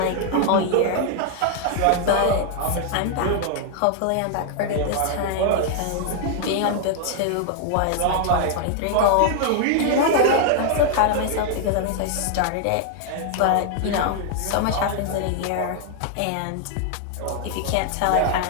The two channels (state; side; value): different; both; correlation 0.00